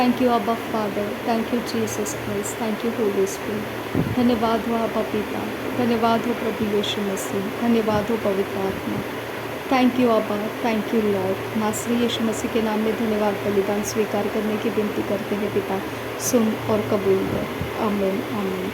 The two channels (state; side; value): identical; both; correlation 1.00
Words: यू अब्बा father, thank you Jesus Christ, thank you Holy spirit. धन्यवाद हो अब्बा पिता, धन्यवाद हो प्रभु यीशु मसीह, धन्यवाद हो पवित्र आत्मा। थैंक यू अब्बा, थैंक यू लॉर्ड। नासरी यीशु मसीह के नाम में धन्यवाद बलिदान स्वीकार करने की विनती करते हैं पिता सुन और कबूल कर आमीन आमीन